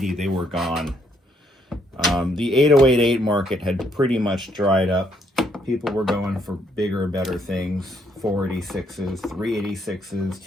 they were gone. The 8088 market had pretty much dried up. People were going for bigger, better things. 486s, 386s,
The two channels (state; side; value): normal; both; correlation 0.72